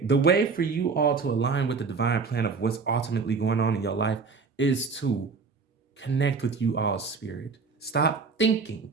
the way for you all to align with the divine plan of what's ultimately going on in your life is to connect with you all's spirit. Stop thinking,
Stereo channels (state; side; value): quieter; left; 4.9 dB